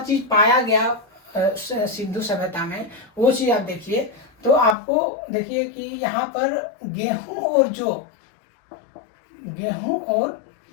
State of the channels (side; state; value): right; drops out; at 4.8 s